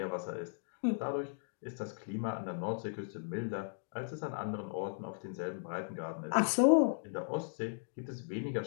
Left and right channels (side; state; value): right; silent; digital silence